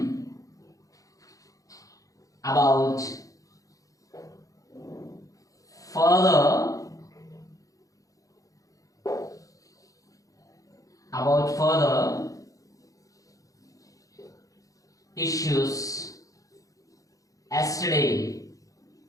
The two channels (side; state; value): right; late; 0.17 ms